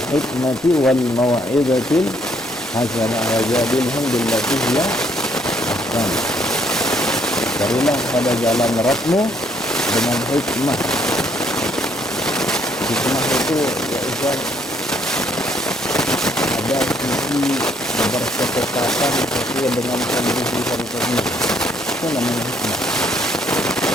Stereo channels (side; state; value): both; normal; correlation 0.68